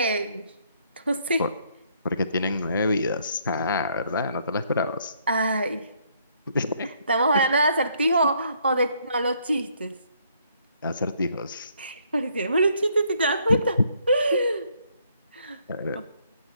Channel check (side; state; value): both; inverted; correlation -0.68